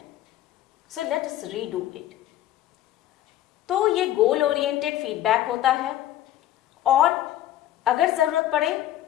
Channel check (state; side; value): quieter; right; 13.2 dB